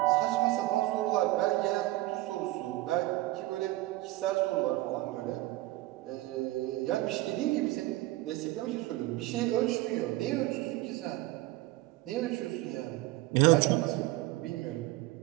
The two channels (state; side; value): quieter; left; 18.2 dB